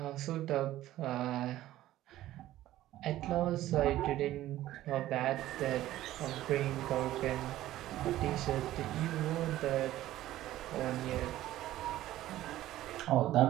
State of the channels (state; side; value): quieter; left; 14.5 dB